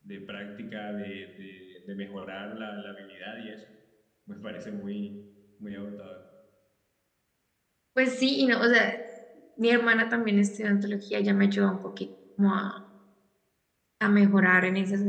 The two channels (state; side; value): identical; both; correlation 1.00